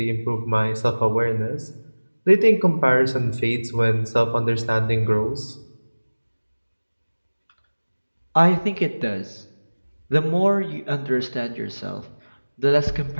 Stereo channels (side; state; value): both; inverted; correlation -1.00